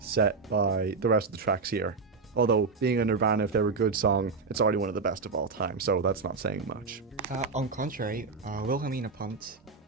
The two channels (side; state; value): left; quieter; 4.5 dB